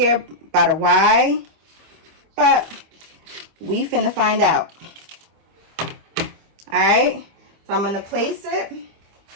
by the Y, but we finna find out. All right, so I'm gonna place it,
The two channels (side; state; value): left; late; 25 ms